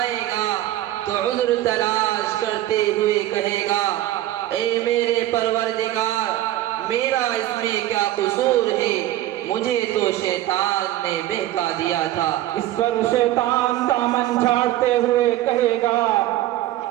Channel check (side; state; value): left; quieter; 14.4 dB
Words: گا تو عذر تلاش کرتے ہوئے کہے گا، اے میرے پروردگار، میرا اس میں کیا قصور ہے، مجھے تو شیطان نے بہکا دیا تھا۔ اس پر شیطان دامن جھاڑتے ہوئے کہے گا،